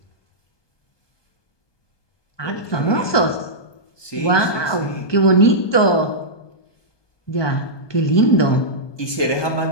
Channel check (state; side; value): late; right; 1.2 ms